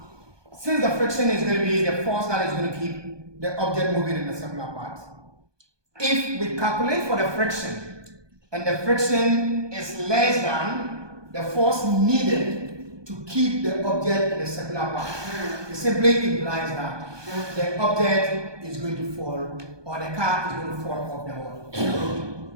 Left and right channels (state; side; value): late; left; 1.2 ms